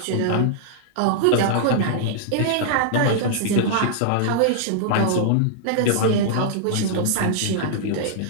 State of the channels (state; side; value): different; both; correlation -0.01